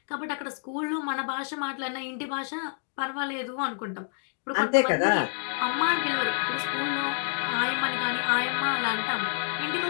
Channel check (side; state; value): right; silent; digital silence